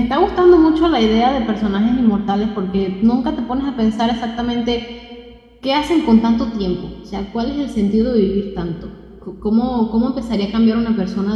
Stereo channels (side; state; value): both; identical; correlation 1.00